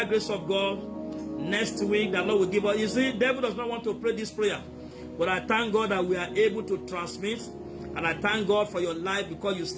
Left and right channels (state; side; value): identical; both; correlation 1.00